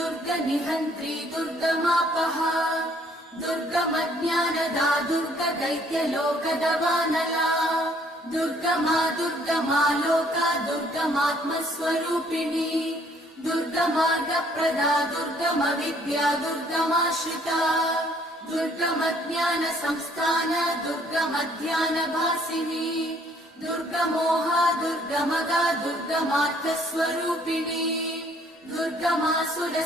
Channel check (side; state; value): both; normal; correlation 0.62